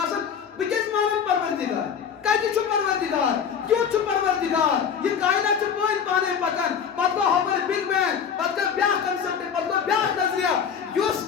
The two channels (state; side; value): quieter; right; 7.3 dB